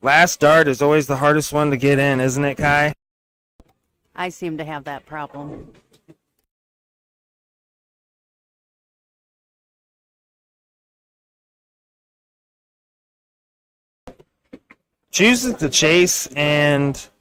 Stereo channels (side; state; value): both; identical; correlation 1.00